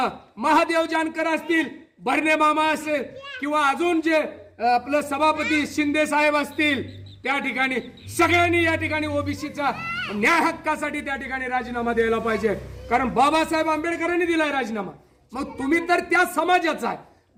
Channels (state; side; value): identical; both; correlation 1.00